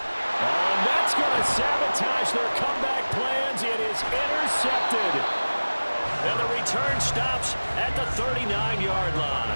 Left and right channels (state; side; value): inverted; both; correlation -1.00